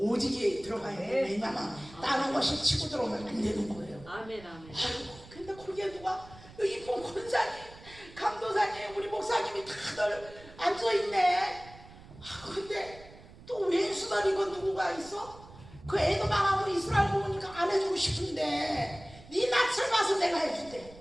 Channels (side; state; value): right; noise; rumble, 19 dB below the sound